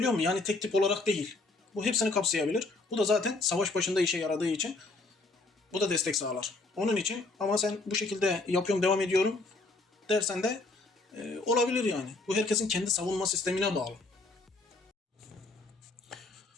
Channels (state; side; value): quieter; right; 3.3 dB